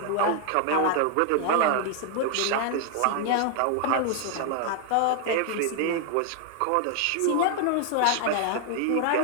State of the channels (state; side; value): different; both; correlation 0.00